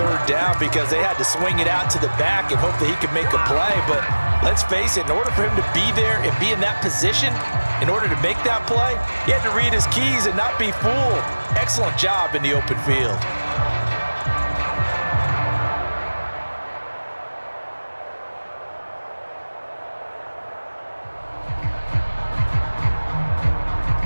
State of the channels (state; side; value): inverted; both; correlation -1.00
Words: down because they had to swing it out to the back and hope that he could make a play. But let's face it, in order for him to be there and be in that position, in order to make that play, he had to read his keys and not be fooled. Excellent job in the open field.